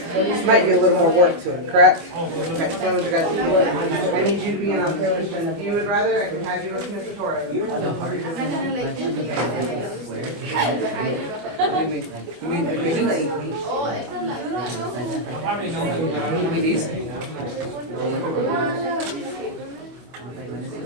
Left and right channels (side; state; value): left; late; 25 ms